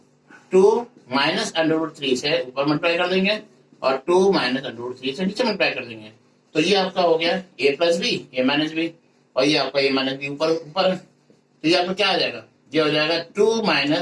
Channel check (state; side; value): identical; both; correlation 1.00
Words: 2 माइनस अंडर रूट 3 से ऊपर मल्टीप्लाई कर देंगे और 2 माइनस अंडर रूट 3 से नीचे मल्टीप्लाई कर देंगे। तो ये आपका हो गया a plus B, a minus B, और ये आपका a माइनस बी ऊपर ऊपर है, तो ये आपका क्या आ जाएगा? ये हो जाएगा 2